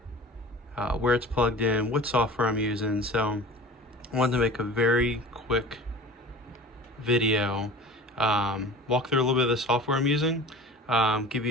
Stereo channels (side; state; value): both; normal; correlation 0.39